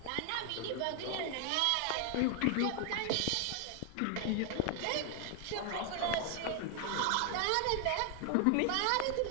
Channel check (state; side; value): different; both; correlation 0.00